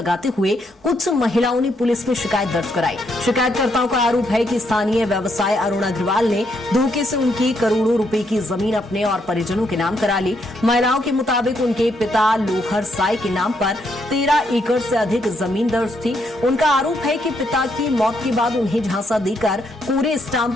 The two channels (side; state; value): both; normal; correlation 0.76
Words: हुए कुछ महिलाओं ने पुलिस में शिकायत दर्ज कराई। शिकायतकर्ताओं का आरोप है कि स्थानीय व्यवसाय अरुण अग्रवाल ने धोखे से उनकी करोड़ों रुपए की जमीन अपने और परिजनों के नाम करा ली। महिलाओं के मुताबिक उनके पिता लोहर साई के नाम पर 13 एकड़ से अधिक जमीन दर्ज थी। उनका आरोप है कि पिता की मौत के बाद उन्हें झांसा देकर पूरे